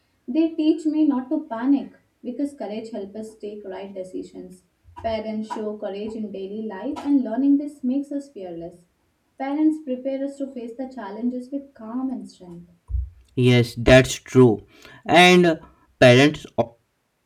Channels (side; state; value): both; identical; correlation 1.00